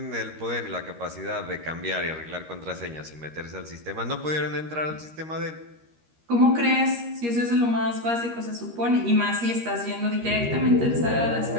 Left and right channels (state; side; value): late; left; 13 ms